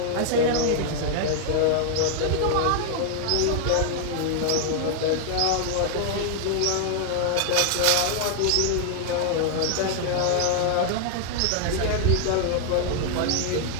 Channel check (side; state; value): both; different; correlation 0.00